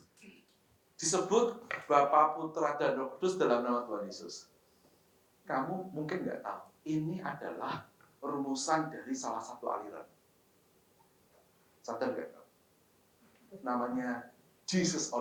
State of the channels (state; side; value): identical; both; correlation 1.00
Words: disebut Bapa, Putra, dan Roh Kudus dalam nama Tuhan Yesus. Kamu mungkin nggak tahu, ini adalah rumusan dari salah satu aliran. Sadar nggak? Namanya Jesus